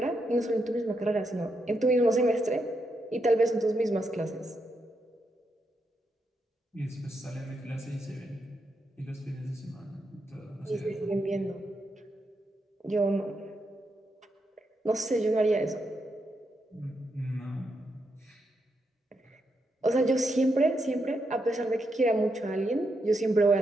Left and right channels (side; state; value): both; normal; correlation 0.82